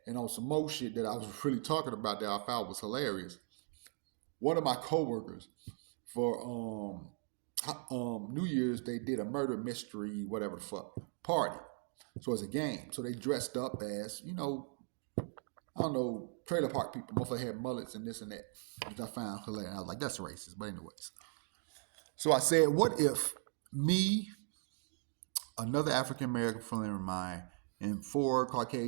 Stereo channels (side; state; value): left; silent; 52 dB below the other